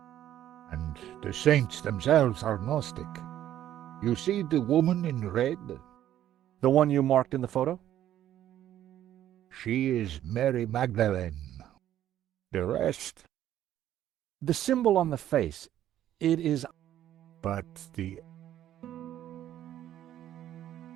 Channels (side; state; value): left; quieter; 11.9 dB